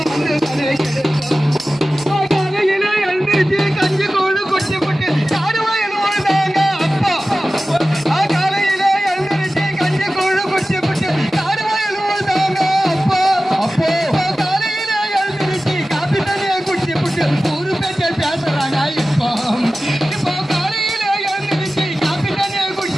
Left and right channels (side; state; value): both; normal; correlation 0.95